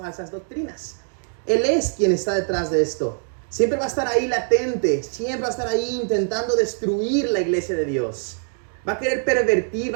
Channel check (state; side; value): silent; left; 58 dB below the other